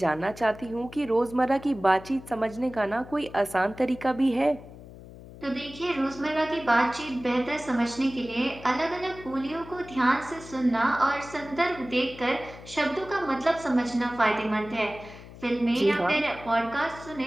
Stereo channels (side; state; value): left; noise; hum, 17 dB below the sound